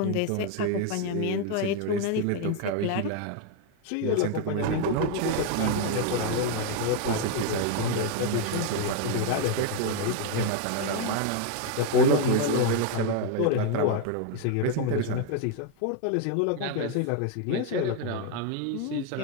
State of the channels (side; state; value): both; different; correlation 0.01